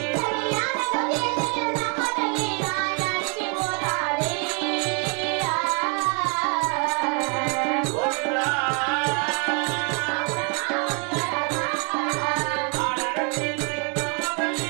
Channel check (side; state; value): left; quieter; 34.6 dB